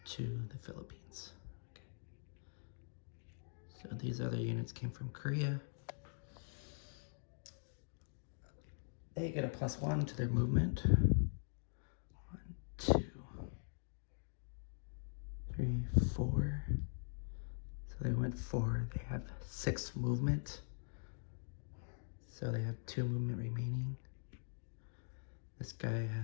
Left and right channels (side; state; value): right; silent; digital silence